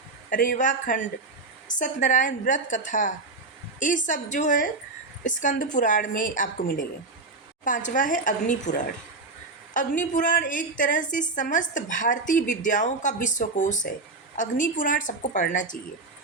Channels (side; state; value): left; quieter; 3.6 dB